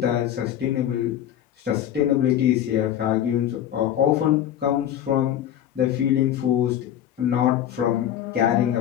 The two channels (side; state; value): right; quieter; 10.9 dB